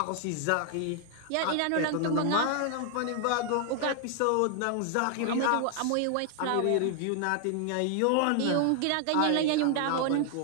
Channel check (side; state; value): both; different; correlation 0.00